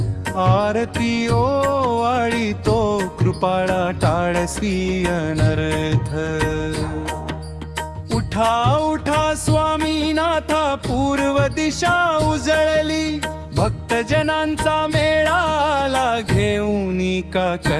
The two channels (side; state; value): both; identical; correlation 1.00